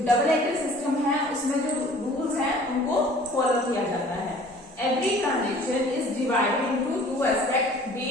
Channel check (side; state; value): both; normal; correlation 0.50